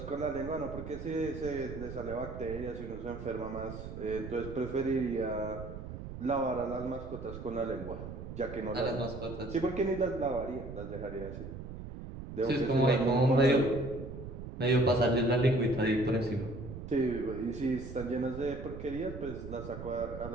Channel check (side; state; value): right; noise; rumble, 10 dB below the sound